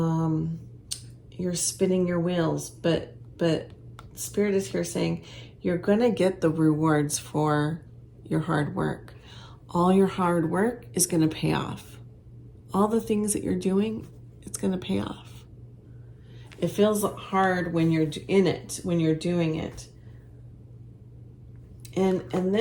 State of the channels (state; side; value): identical; both; correlation 1.00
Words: spinning your wheels, but Spirit is here saying you're going to get the rewards for your hard work. All your hard work is going to pay off. All the things that you're doing, it's going to pay off. It feels hard when you're in it, when you're doing it. And